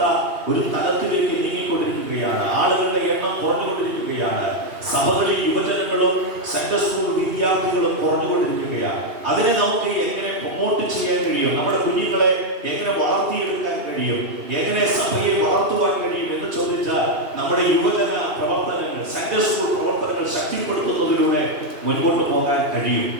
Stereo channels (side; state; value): left; late; 2.8 ms